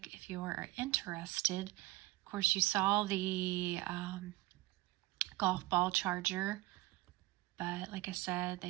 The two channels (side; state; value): left; quieter; 19.5 dB